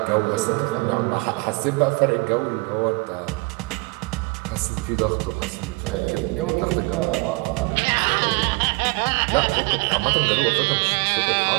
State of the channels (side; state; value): left; quieter; 27.8 dB